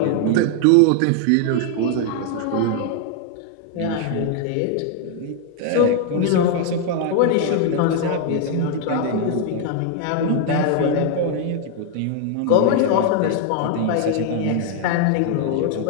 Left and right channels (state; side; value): different; both; correlation 0.00